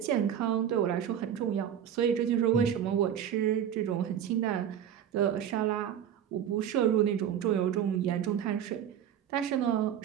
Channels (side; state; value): left; quieter; 9.5 dB